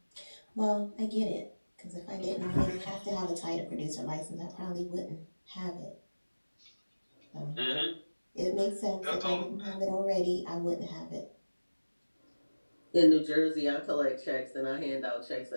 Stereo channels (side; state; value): both; inverted; correlation -1.00